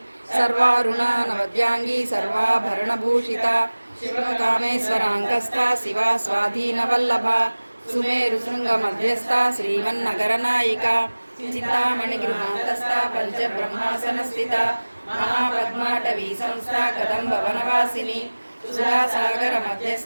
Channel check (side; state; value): both; inverted; correlation -1.00